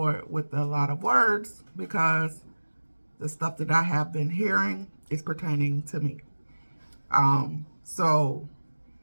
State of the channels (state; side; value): inverted; both; correlation -1.00